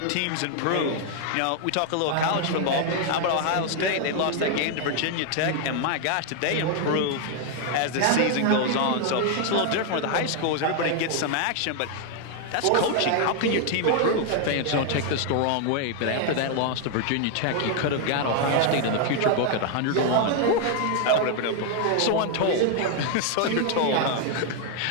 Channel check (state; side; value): different; both; correlation 0.00